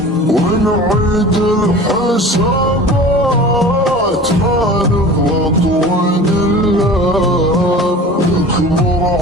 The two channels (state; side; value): normal; both; correlation 0.39